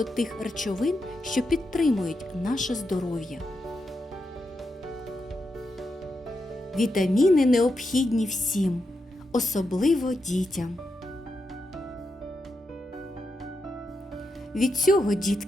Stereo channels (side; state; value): both; normal; correlation 0.85